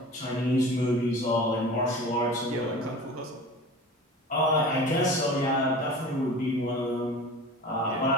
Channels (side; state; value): both; normal; correlation 0.38